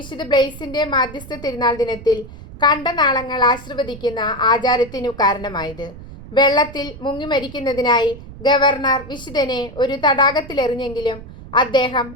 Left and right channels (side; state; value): right; noise; rumble, 15 dB below the sound